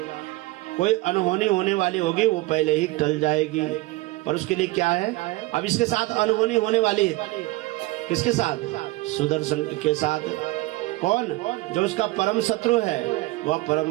कोई अनहोनी होने वाली होगी वो पहले ही टल जाएगी। पर उसके लिए क्या है, अब इसके साथ अनहोनी होने वाली है। किसके साथ? सुदर्शन के साथ। कौन? जो उसका परम शत्रु है, वह परम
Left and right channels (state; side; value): quieter; left; 20.6 dB